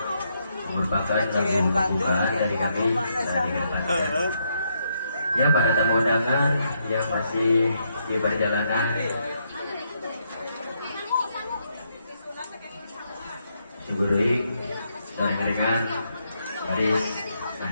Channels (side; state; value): both; inverted; correlation -0.77